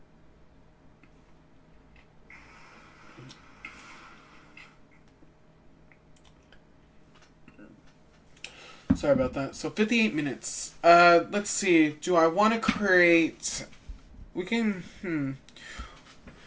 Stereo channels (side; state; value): both; identical; correlation 1.00